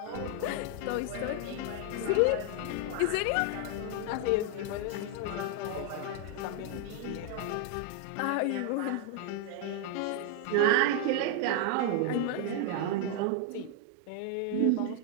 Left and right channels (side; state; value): both; different; correlation 0.00